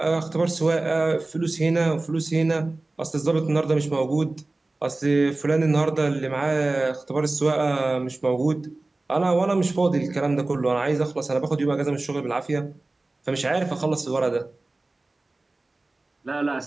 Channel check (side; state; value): left; quieter; 3.1 dB